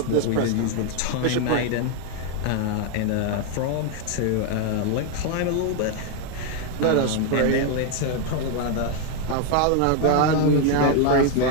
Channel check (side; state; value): both; different; correlation 0.01